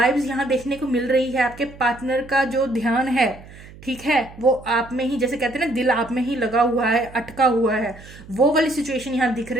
यहाँ देखने को मिल रही है। आपके पार्टनर का जो ध्यान है, ठीक है, वो आप में ही, जैसे कहते हैं ना, दिल आप में ही लगा हुआ है, अटका हुआ है, वो वाली सिचुएशन यहाँ दिख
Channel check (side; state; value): right; noise; hum, 19 dB below the sound